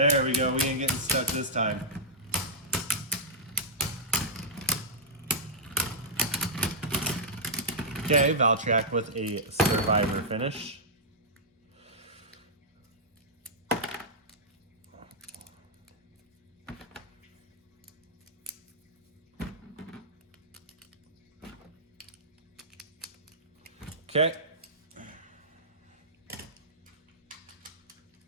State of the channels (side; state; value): both; normal; correlation -0.11